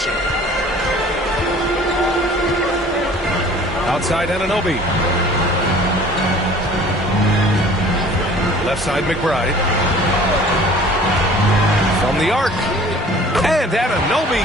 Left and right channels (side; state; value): both; normal; correlation 0.49